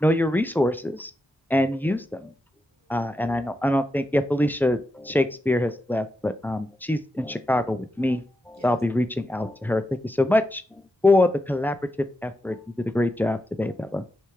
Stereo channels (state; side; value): normal; both; correlation 0.87